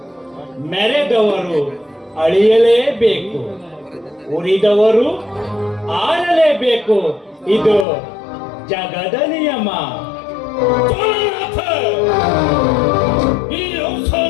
ಮೆರೆದವರು ಅಳಿಯಲೇಬೇಕು, ಉರಿದವರು ಆರಲೇಬೇಕು. ಇದು ಜಗದ ನಿಯಮ. ಜ್ವಾಲನಾಥ, ಈ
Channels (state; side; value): drops out; right; at 7.9 s